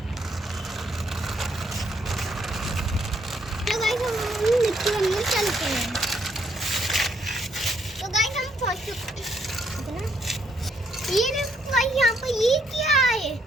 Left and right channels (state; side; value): normal; both; correlation 0.72